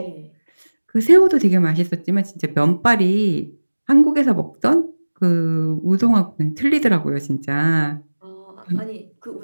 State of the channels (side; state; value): both; inverted; correlation -1.00